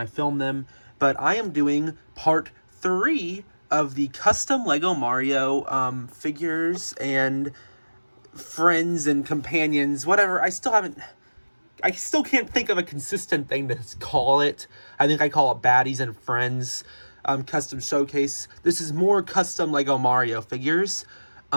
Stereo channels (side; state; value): both; inverted; correlation -1.00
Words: film them, but I am doing part 3 of the custom Lego Mario figures and friends and companions, whatever. I still can't think of a consistent thing to call it. I think I call it Baddies and Friends custom showcase. This is more custom Lego Mario figures.